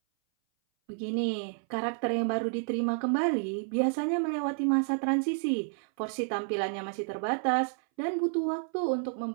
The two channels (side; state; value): left; silent; 58 dB below the other